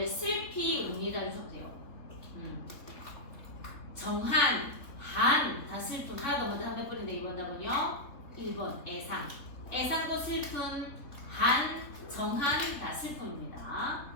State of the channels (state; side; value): late; right; 3.6 ms